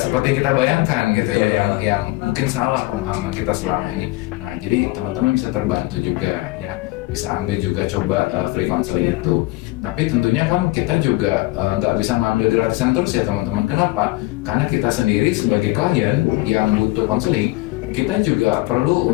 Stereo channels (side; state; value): right; quieter; 20.5 dB